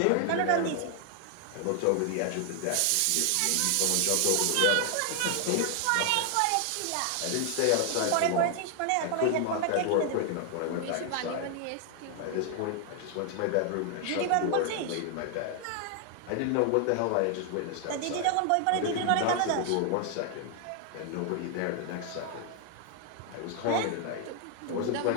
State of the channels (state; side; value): different; both; correlation 0.00